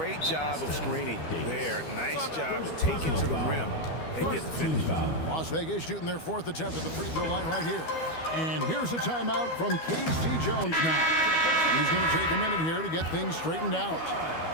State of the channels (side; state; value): right; late; 12 ms